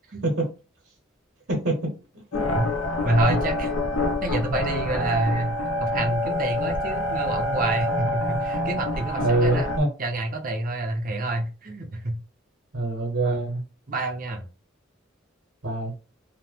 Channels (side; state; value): both; normal; correlation 0.44